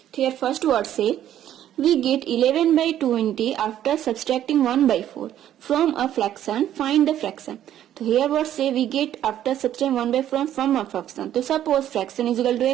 Here first word say, we get 11 by 20 after subtracting 1 by 4 from a fraction, find the fraction. So here what say, we get after subtracting 1 by 4 from a fraction. So suppose fraction is equal to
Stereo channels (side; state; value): left; quieter; 11.4 dB